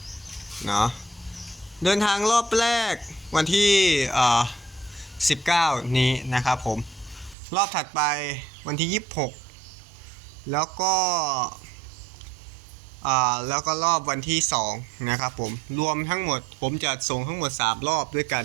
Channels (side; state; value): left; drops out; at 7.4 s